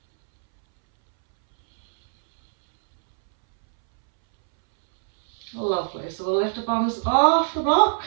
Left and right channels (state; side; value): silent; left; 65 dB below the other